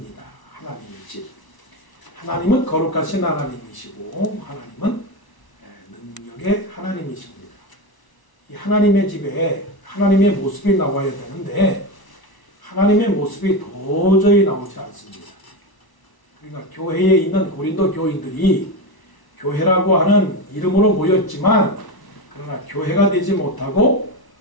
하나님의 집. 하나님은 거룩하신 하나님이시고 하나님은 능력의 하나님이십니다. 이 하나님의 집에 하나님의 모습이 나와야 되는데 하나님의 모습이 도저히 나오지 않습니다. 그러니까 교회에 있는 고린도 교인들이 교회라고 하는 이름으로 모였지만 그러나 교회가 되지 못하고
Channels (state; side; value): late; right; 1.0 ms